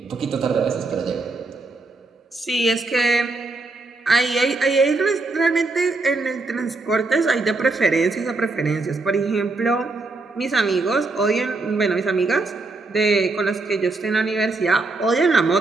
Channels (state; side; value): quieter; left; 3.4 dB